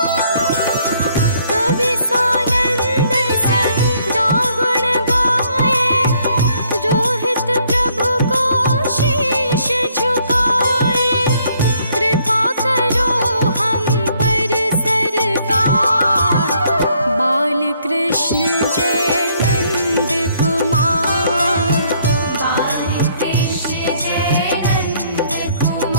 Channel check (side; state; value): both; inverted; correlation -0.67